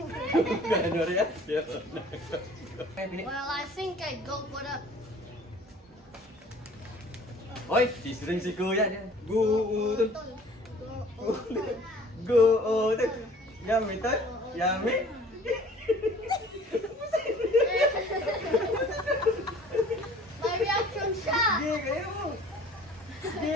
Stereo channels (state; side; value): normal; both; correlation 0.51